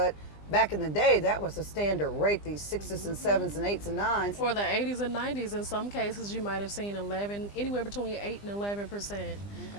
back in the day, that was a standard rate, these 6s and 7s and 8s and 9s. For the 80s and 90s, in some cases, you might have seen anywhere between 8 and 11%.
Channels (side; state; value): right; late; 20 ms